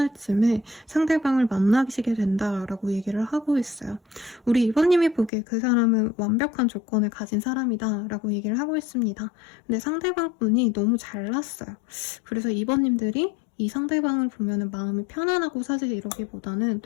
쯤에 상대방을 만나시게 된다라고 얘기를 하고 있어요. 우리 이번님이 보기에 그 사람은 완벽한 조건을 가진 사람이다 라고 얘기를 하고 있습니다. 근데 상대방 분이 너무 잘났어요. 그래서 이번님들이 이 상대방을 보면은 마음이 편안하고 사실 이러기보다는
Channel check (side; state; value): right; drops out; at 5.3 s